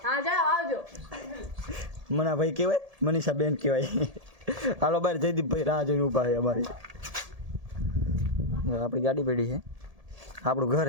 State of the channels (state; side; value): late; left; 1.8 ms